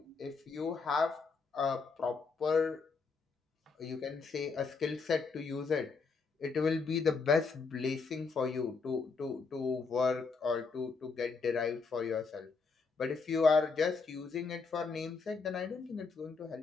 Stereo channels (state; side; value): quieter; right; 4.6 dB